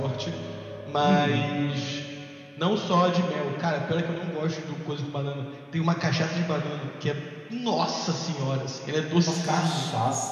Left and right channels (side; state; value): both; identical; correlation 1.00